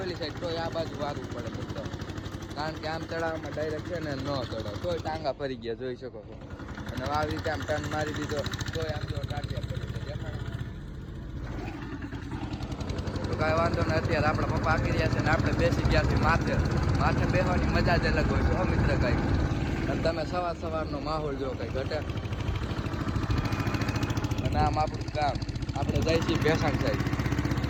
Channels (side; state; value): both; identical; correlation 1.00